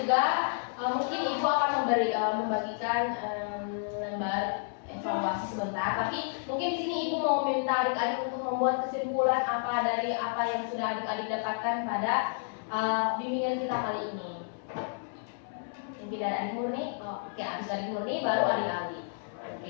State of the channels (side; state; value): right; silent; 57 dB below the other